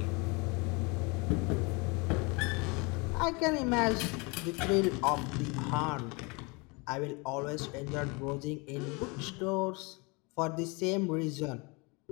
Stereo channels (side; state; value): right; quieter; 28.8 dB